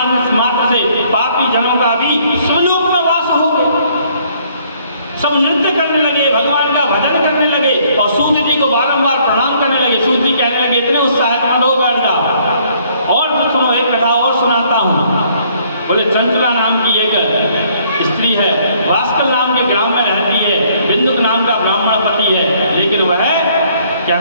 मात्र से पापी जनों का भी शिवलोक में वास हो गया। सब नृत्य करने लगे, भगवान का भजन करने लगे, और सूत जी को बारंबार प्रणाम करने लगे। सूत जी कहने लगे इतने उत्साहित मत हो, बैठ जाओ और सुनो, एक कथा और सुनाता हूँ। बोले चंचुला नाम की एक स्त्री है, वास्कल नाम के ग्राम में रहती है, बिंदुक नाम का ब्राह्मण पति है, लेकिन वह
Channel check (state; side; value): inverted; both; correlation -0.63